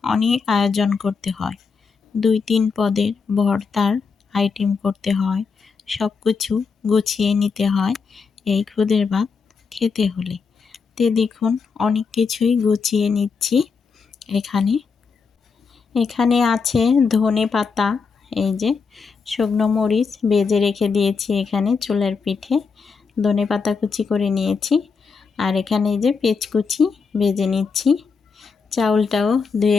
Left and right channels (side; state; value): right; quieter; 5.2 dB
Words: অনেক আয়োজন করতে হয়। 2-3 পদের ভর্তার আইটেম করতে হয়, সব কিছু গুছিয়ে নিতে হয় এই খুদের ভাত খেতে হলে। দেখুন অনেক কিছুই গুছিয়ে নিচ্ছি। এখানে এখানে আছে ধনে পাতা, এই যে শুকনো মরিচ ভেজে রেখে দিয়েছি এখানে চুলার পিঠে। ধনে পাতা কুচি করে নিয়েছি, আর এখানে এই যে পেঁয়াজ কুচি ভেজে নিচ্ছি। চাউলটাও